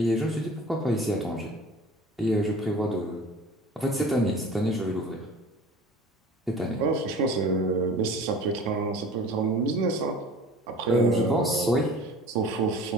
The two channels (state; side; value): normal; both; correlation 0.43